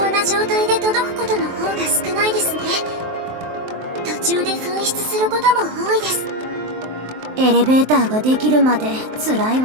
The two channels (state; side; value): late; left; 23 ms